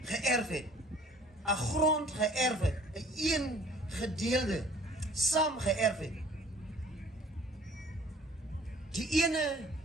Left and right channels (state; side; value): normal; both; correlation 0.53